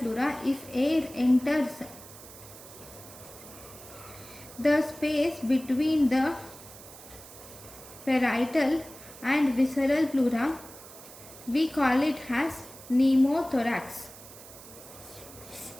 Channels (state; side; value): noise; right; hiss, 17 dB below the sound